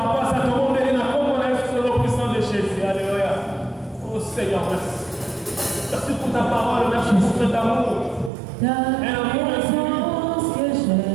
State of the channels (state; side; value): drops out; left; at 8.3 s